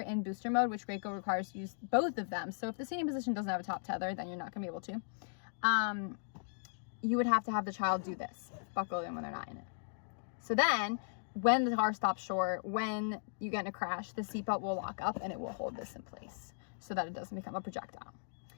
booster mode, which Graco requires you use both of them, so if the seating position doesn't have a top tether, then you're not going to be able to, you would have to have the child do this, buckle in when they're not in it. So then, when the car stops short, when you get in a crash, the seatbelt will lock up and it will hold this in place so that it doesn't become a projectile.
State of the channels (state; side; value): silent; right; digital silence